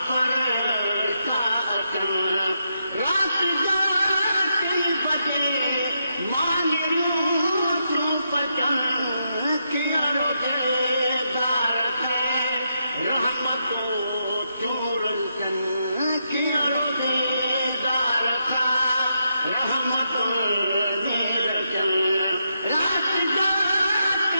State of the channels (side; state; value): both; inverted; correlation -0.82